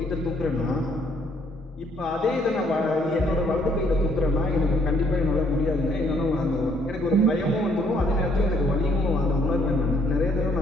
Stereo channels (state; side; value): normal; both; correlation 0.66